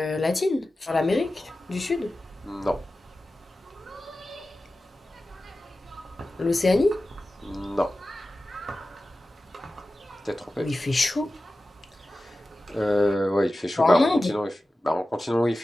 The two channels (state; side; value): normal; both; correlation 0.95